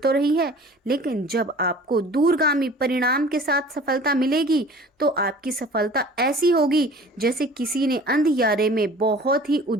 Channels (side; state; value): both; normal; correlation 0.46